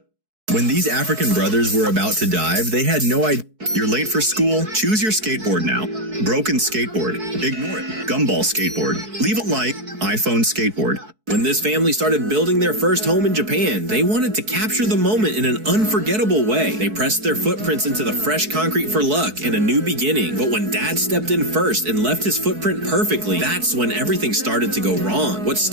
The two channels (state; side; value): late; left; 4.6 ms